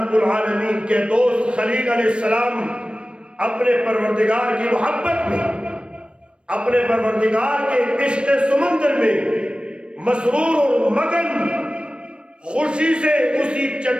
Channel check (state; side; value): late; left; 0.057 ms